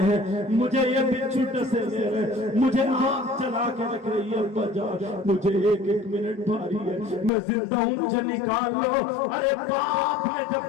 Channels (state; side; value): drops out; right; at 7.3 s